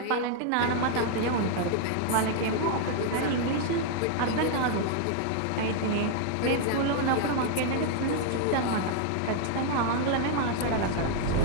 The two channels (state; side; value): different; both; correlation 0.00